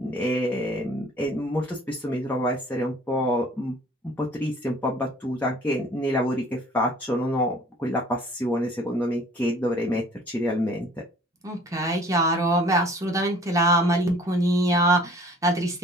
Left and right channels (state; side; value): normal; both; correlation 0.52